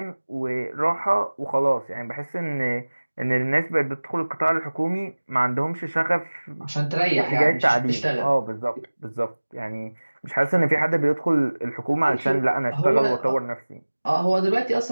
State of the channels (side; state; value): both; inverted; correlation -1.00